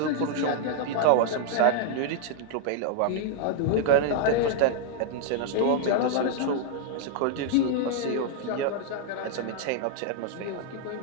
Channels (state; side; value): different; both; correlation 0.00